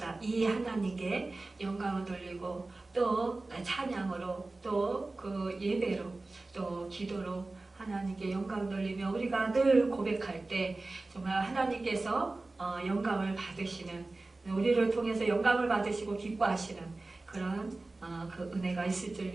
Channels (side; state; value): left; quieter; 3.2 dB